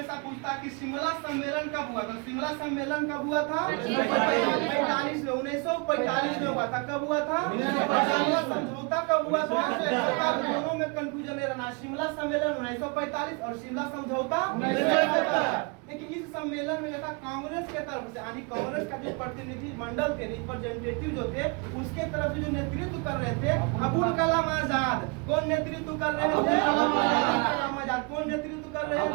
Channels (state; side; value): quieter; left; 31.7 dB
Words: पूछता कि शिमला सम्मेलन कब हुआ था? शिमला सम्मेलन कब हुआ था? 1945 में। 1945 में हुआ था। कब हुआ था? शिमला समझौता कब हुआ था? दोनों में कंफ्यूजन नहीं रहना। शिमला सम्मेलन 1945 और शिमला समझौता 1971। लेकिन इस सम्मेलन में था कांग्रेस के तरफ से, यानी कांग्रेस का जो प्रतिनिधि मंडल थे, रिप्रेजेंटेटिव जो थे, उसके तरफ से जो नेतृत्व कर रहे थे अबुल कलाम आजाद। कौन नेतृत्व कर रहे थे? कलाम आजाद। कौन नेतृत्व कर रहे